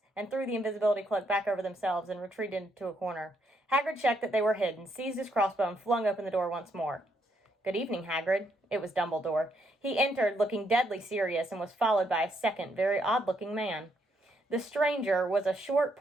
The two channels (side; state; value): both; normal; correlation 0.75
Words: and threw the invisibility cloak back over themselves and retreated into a corner. Hagrid checked that they were hidden, seized his crossbow, and flung open the door once more. "Good evening, Hagrid." It was Dumbledore. He entered, looking deadly serious, and was followed by a second, very odd-looking man. The stranger was a short,